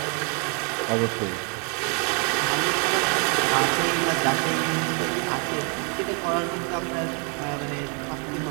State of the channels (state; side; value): quieter; left; 36.9 dB